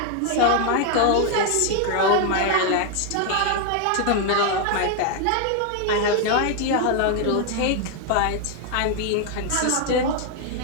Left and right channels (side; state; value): both; different; correlation 0.01